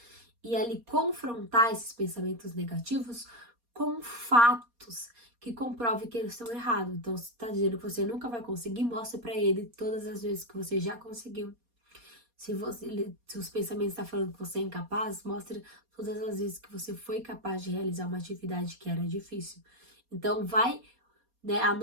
e ali confrontar esses pensamentos negativos com fatos que comprovem que eles estão errados. Então, se tá dizendo que você nunca vai conseguir, mostre para ele todas as vezes que você já conseguiu. Se os pensamentos estão falando que você é incapaz, mostre todas as vezes que você foi capaz de realizar uma atividade que era difícil. Então, vai, né,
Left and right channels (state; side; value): late; left; 4.2 ms